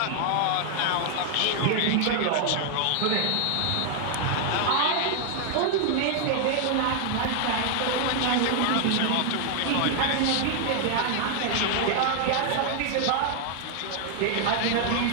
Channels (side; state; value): both; different; correlation 0.00